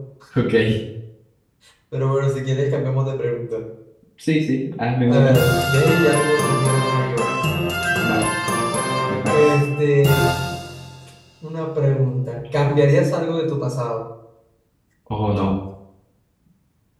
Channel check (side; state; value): both; identical; correlation 1.00